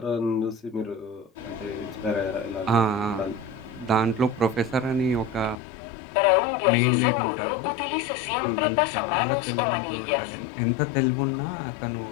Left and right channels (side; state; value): right; drops out; at 5.6 s